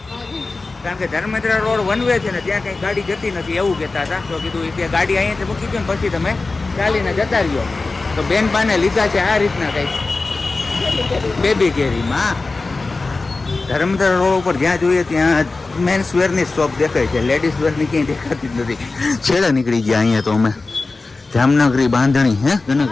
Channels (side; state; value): right; quieter; 3.6 dB